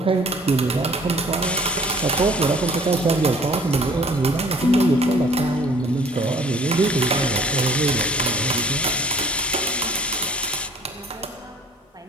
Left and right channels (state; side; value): normal; both; correlation 0.54